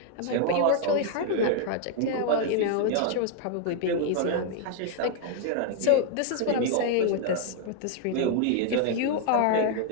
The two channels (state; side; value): different; both; correlation 0.00